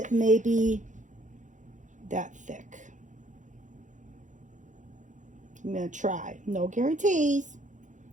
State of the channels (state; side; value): late; left; 0.36 ms